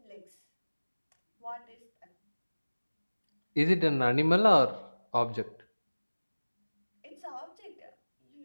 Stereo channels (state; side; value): inverted; both; correlation -1.00